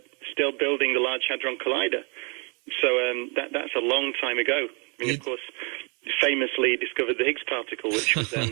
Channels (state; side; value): quieter; left; 34.1 dB